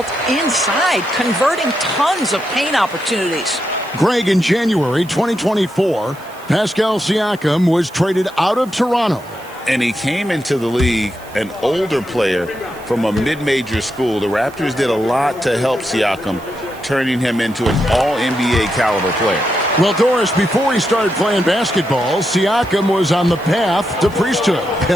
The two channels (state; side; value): noise; right; hiss, 23 dB below the sound